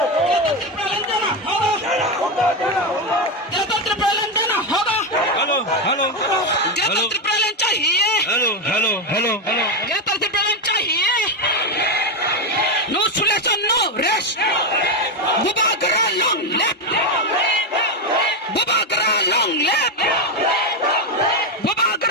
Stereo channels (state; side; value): normal; both; correlation 0.09